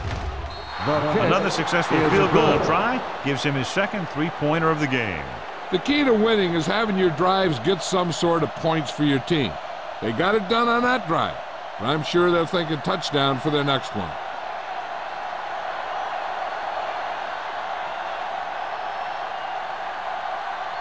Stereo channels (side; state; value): both; identical; correlation 1.00